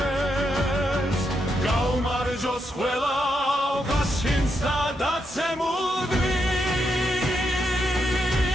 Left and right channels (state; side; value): normal; both; correlation 0.82